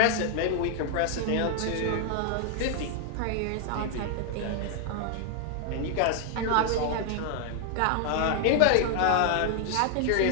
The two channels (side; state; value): both; different; correlation 0.00